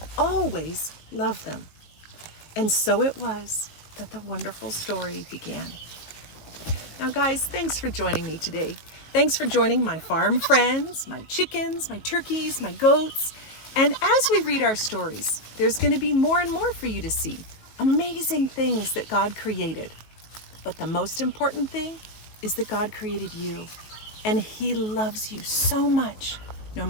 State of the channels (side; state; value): right; late; 19 ms